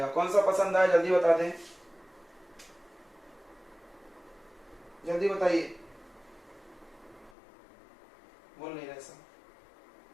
कौन सा पसंद आए जल्दी बता दें, जल्दी बताइए। बोल नहीं रहे सब।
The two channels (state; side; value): drops out; right; at 7.3 s